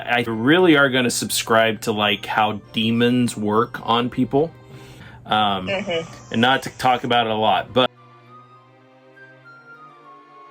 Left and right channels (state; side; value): identical; both; correlation 1.00